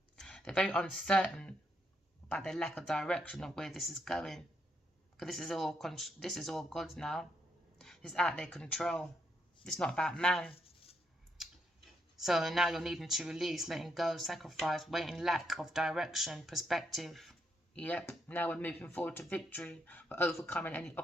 They're very uncertain about their lack of direction of where this is going. Because this is all God's now. It's out of their control. It's not about man. So now you're needing to release, letting go, sacrifice, waiting, lack of direction, perspective. Yep, now we're moving forward to victory. We're overcoming any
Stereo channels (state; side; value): normal; both; correlation 0.78